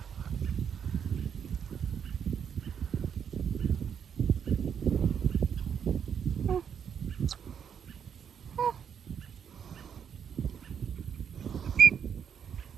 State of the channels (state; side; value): quieter; left; 7.8 dB